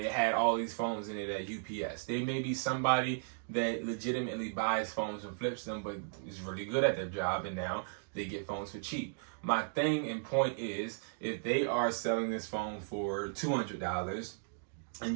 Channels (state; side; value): silent; left; digital silence